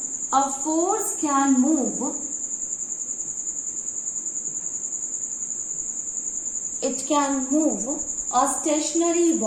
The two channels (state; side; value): identical; both; correlation 1.00